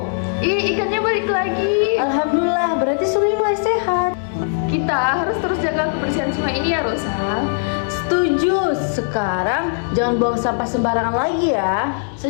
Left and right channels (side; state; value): right; silent; digital silence